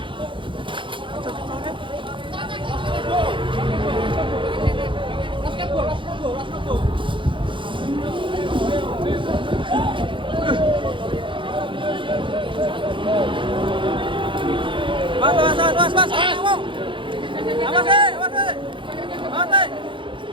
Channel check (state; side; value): late; left; 0.24 ms